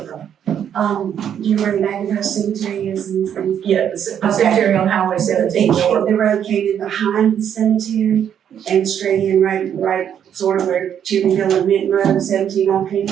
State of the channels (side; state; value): left; quieter; 9.1 dB